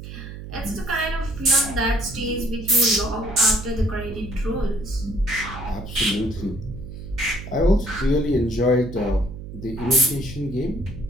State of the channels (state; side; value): noise; right; hum, 11 dB below the sound